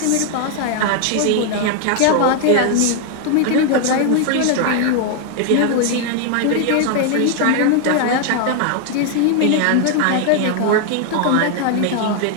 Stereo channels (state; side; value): different; both; correlation 0.00